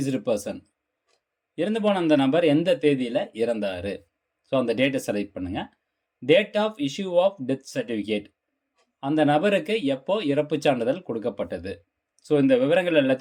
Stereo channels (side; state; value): both; identical; correlation 1.00